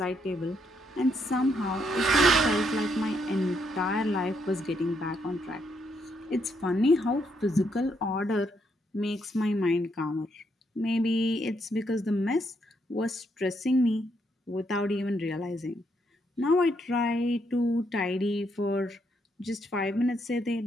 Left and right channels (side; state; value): both; normal; correlation 0.75